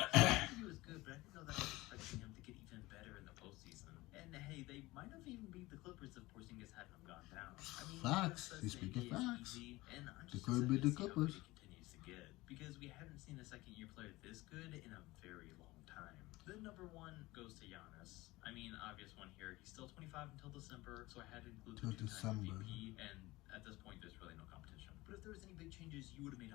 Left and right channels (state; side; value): quieter; right; 20.1 dB